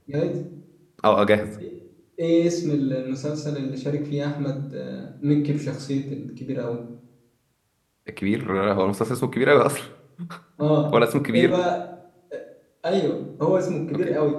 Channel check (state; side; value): identical; both; correlation 1.00